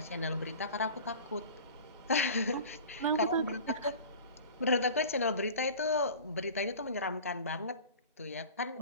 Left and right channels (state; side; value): inverted; both; correlation -0.39